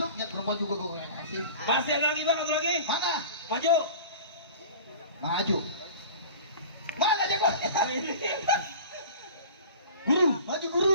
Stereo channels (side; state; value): both; inverted; correlation -0.40